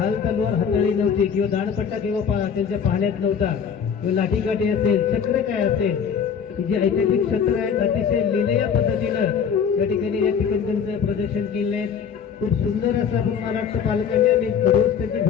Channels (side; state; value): right; quieter; 7.2 dB